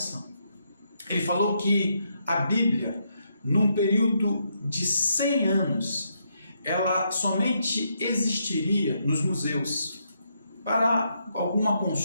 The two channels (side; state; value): both; inverted; correlation -0.78